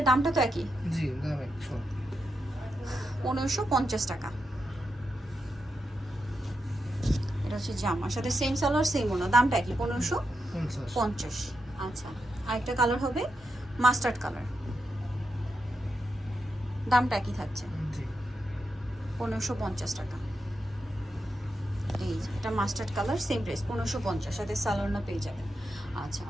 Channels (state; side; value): normal; both; correlation 0.86